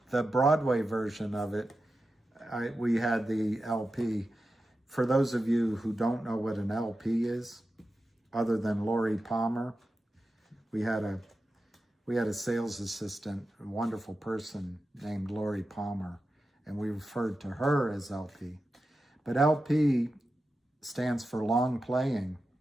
Broadway version of it. We had the LP. For those of you who don't know what an LP is, other than Lori Palmer, we had a sales assistant, a wonderful person named Lori Palmer, and we referred to her as LP. But LP stands for long playing.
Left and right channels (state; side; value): normal; both; correlation 0.92